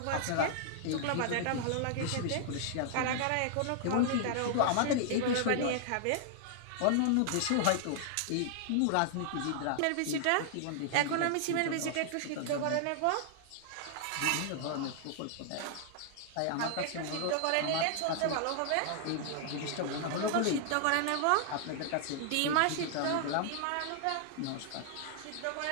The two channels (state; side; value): different; both; correlation -0.01